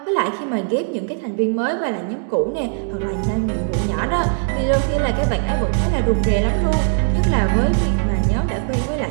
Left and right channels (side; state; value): left; silent; digital silence